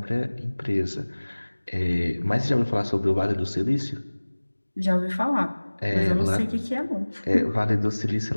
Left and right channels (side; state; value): both; inverted; correlation -1.00